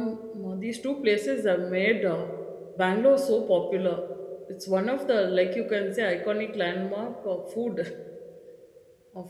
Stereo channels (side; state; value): both; identical; correlation 1.00